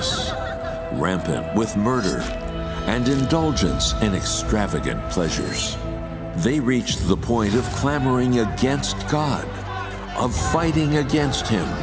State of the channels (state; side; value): identical; both; correlation 1.00